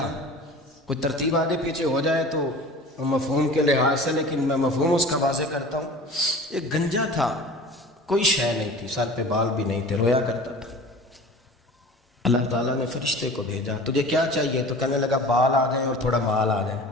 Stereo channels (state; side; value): normal; both; correlation 0.40